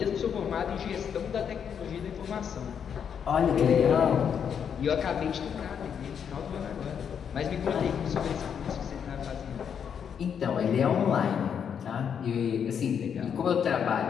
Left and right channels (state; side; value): quieter; right; 7.7 dB